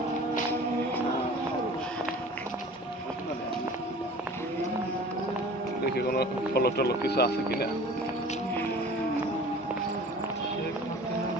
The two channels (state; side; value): normal; both; correlation 0.44